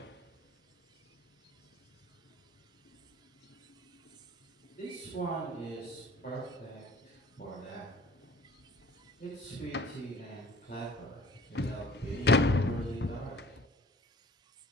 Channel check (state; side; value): normal; both; correlation 0.50